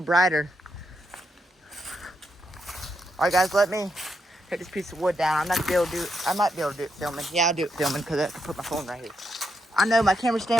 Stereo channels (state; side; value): normal; both; correlation 0.81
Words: brighter. All right, guys, let me take this piece of wood down. I'm not gonna be able to do it. I might be able to do it filming. Yeah, I'll do it filming because I can put my phone right here. I know my camera